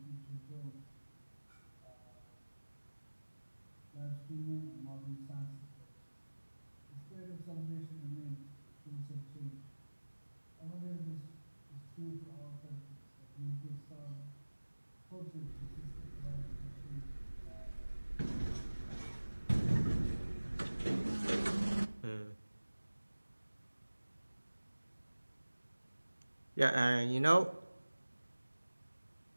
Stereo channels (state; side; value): inverted; both; correlation -1.00